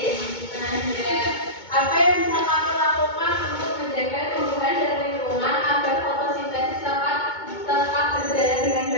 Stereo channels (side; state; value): right; late; 2.2 ms